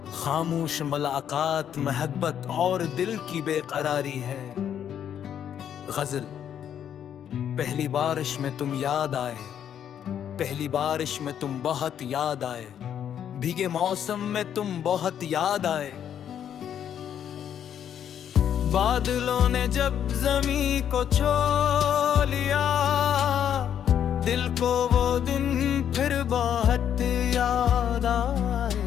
खामोश मुलाकात, महब्बत और दिल की बेकरारी है। गज़ल। पहली बारिश में तुम याद आए, पहली बारिश में तुम बहुत याद आए, भीगे मौसम में तुम बहुत याद आए। बादलों ने जब जमी को छू लिया, दिल को वो दिन फिर बहुत याद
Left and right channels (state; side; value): quieter; right; 9.3 dB